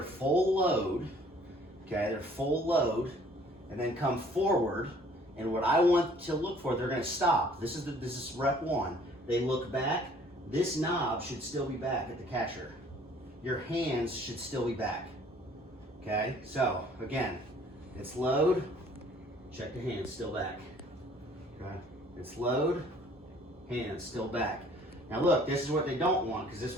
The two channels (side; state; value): both; normal; correlation 0.56